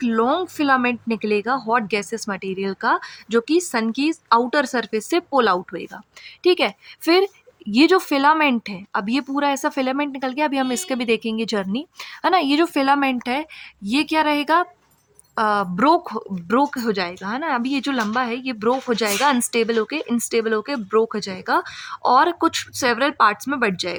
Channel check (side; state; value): both; identical; correlation 1.00